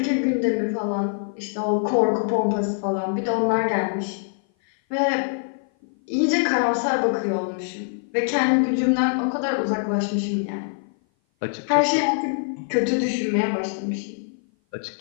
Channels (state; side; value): silent; right; 57 dB below the other